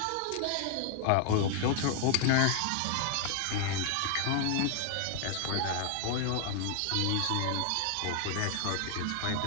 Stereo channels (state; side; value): different; both; correlation 0.00